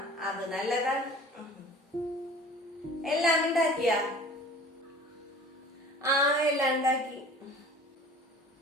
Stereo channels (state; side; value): normal; both; correlation 0.44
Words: അത് നല്ലതാണ്. എല്ലാം ഉണ്ടാക്കിയ? എല്ലാം ഉണ്ടാക്കി.